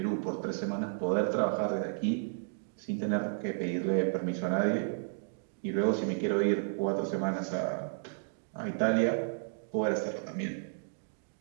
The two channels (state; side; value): silent; left; digital silence